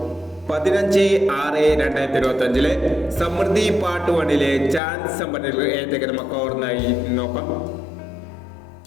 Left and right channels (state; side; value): drops out; right; at 4.8 s